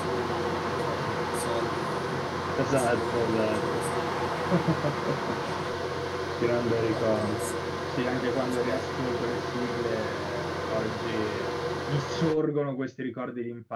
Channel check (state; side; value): identical; both; correlation 1.00